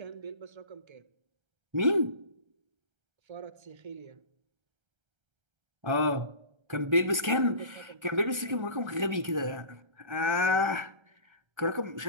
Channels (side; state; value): left; late; 1.3 ms